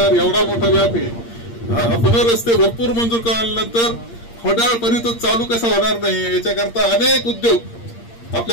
एवढा मोठा व्याप आहे. आपण रस्ते भरपूर मंजूर केल्यानंतर फडाळपर्यंत चालू कसा होणार नाही, याच्याकरता अनेक उद्योग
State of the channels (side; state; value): right; late; 8.7 ms